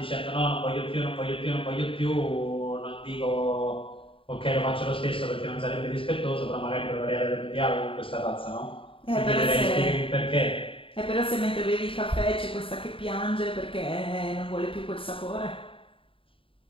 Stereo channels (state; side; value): late; right; 0.26 ms